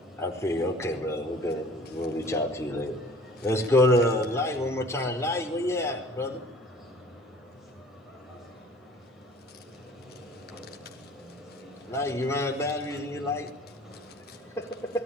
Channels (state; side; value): normal; both; correlation 0.49